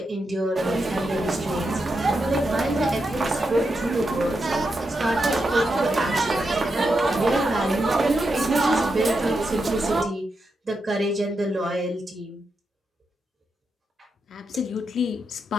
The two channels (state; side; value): normal; both; correlation 0.86